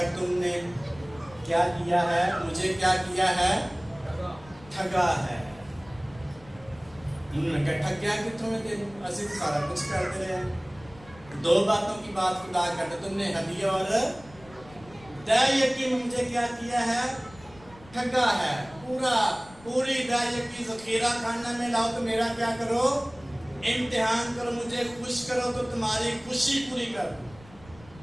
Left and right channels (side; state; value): left; noise; rumble, 22 dB below the sound